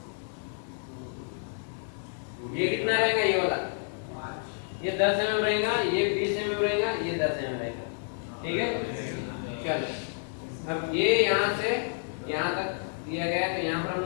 ये कितना रहेगा, ये वाला, ये 10 mm रहेगा, ये 20 mm रहेगा, ये 10 mm रहेगा। ठीक है, चलो अब ये यहाँ से यहाँ तक दिया गया है, तो यहाँ पर हम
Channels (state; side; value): silent; right; 58 dB below the other